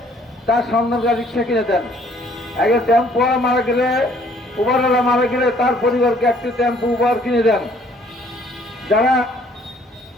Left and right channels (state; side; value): normal; both; correlation 0.61